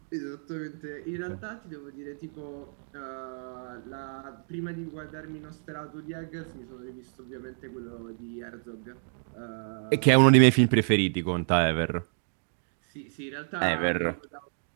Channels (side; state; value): left; silent; digital silence